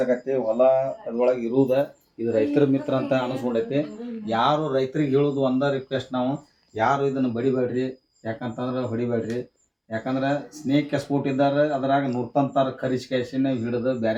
ಹೊಲ ಅದ್ರೊಳಗೆ ಇರುವುದ. ಇದು ರೈತರ ಮಿತ್ರ ಅಂತ ಅನಿಸ್ಬಿಡೈತಿ. ಯಾರು ರೈತರಿಗೆ ಹೇಳೋದು ಒಂದ ರಿಕ್ವೆಸ್ಟ್, ನಾವು ಯಾರು ಇದನ್ನು ಬಡಿಬೇಡ್ರಿ. ಯಾಕಂತಂದ್ರೆ ಹೊಡಿಬೇಡ್ರಿ. ಯಾಕಂದ್ರೆ ಸ್ನೇಕ್ ಸ್ಪೋರ್ಟ್ ಇದ್ದಾರೆ, ಅದ್ರಾಗ ನುರ್ತಂತಾರ ಕರಿಸ್ಕೇಸಿನ ಹಿಡಿದು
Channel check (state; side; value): identical; both; correlation 1.00